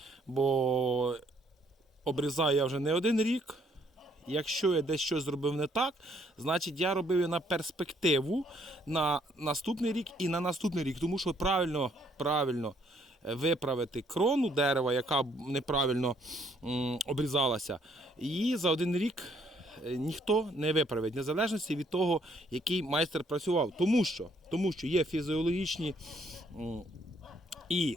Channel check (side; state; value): both; normal; correlation 0.67